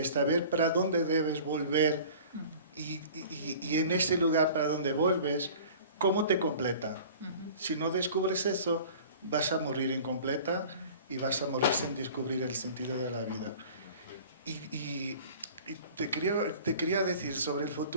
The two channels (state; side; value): inverted; both; correlation -0.44